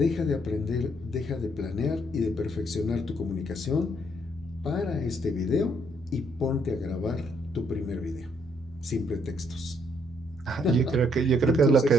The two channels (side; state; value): both; normal; correlation 0.70